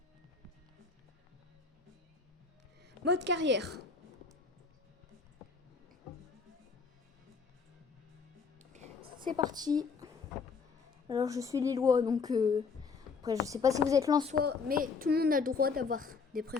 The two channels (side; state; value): right; quieter; 5.0 dB